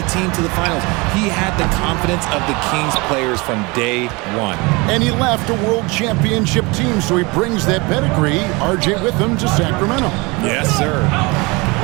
team to the finals. He had the confidence of the Kings players from day one. And he left a world championship team, so he brings that pedigree, RJ, with him to Sacramento. Yes, sir.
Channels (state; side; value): quieter; left; 25.9 dB